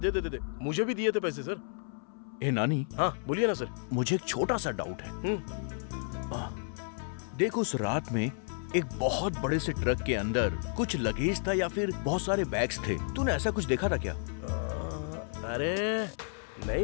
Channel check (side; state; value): right; silent; 57 dB below the other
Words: देते थे। मुझे भी दिए थे पैसे सर। ए नानी। हाँ बोलिए ना सर। मुझे एक छोटा सा डाउट है। देखो, उस रात में एक बहुत बड़े से ट्रक के अंदर कुछ लगेज था या फिर बहुत सारे बैग्स थे, तूने ऐसा कुछ देखा था क्या? अरे